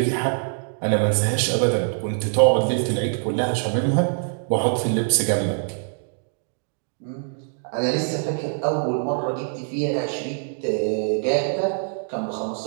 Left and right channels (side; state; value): left; silent; digital silence